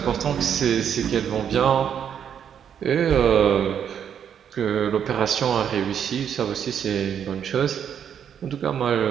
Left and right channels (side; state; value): left; quieter; 8.5 dB